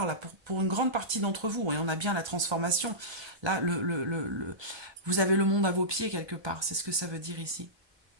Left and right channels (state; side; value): late; left; 1.3 ms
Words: là pour une grande partie d'entre vous, et on a bien la transformation. Là, vous avez le monde à vos pieds quelque part, c'est ce que ça veut dire ici.